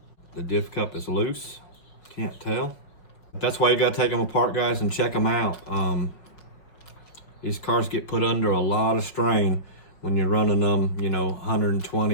the diff cup is loose. Can't tell. That's why you gotta take them apart, guys, and check them out. These cars get put under a lot of strain when you're running them, you know,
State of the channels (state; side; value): late; right; 5.5 ms